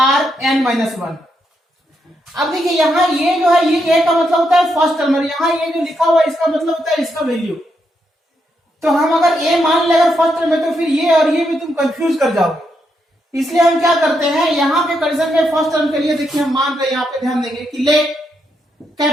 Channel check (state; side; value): normal; both; correlation 0.80